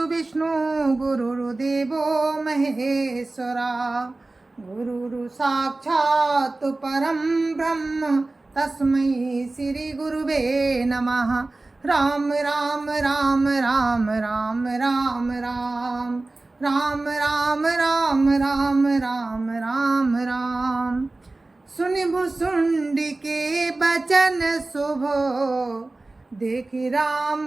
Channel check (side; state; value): left; quieter; 3.1 dB